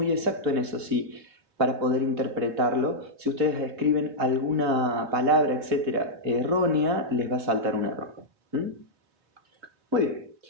exactos en eso, si para poder interpretarlo, si ustedes escriben alguna palabra, etcétera, errónea, les va a saltar un error. Muy bien.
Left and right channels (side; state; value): left; late; 3.5 ms